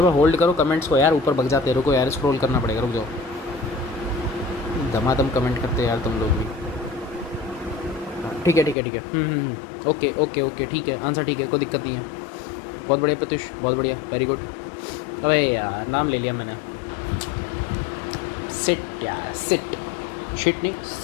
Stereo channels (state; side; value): drops out; right; at 8.8 s